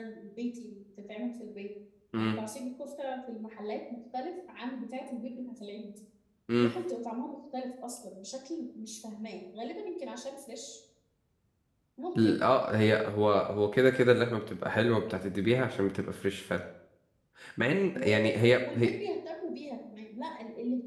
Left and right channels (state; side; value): identical; both; correlation 1.00